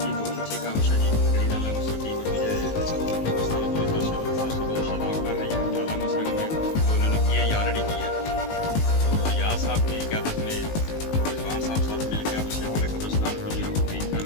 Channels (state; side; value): late; right; 19 ms